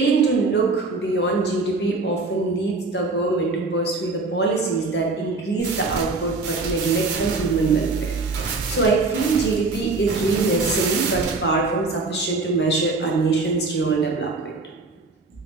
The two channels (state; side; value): quieter; left; 3.6 dB